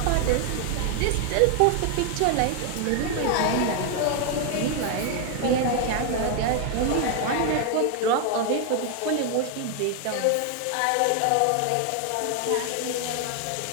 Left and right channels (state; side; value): different; both; correlation 0.00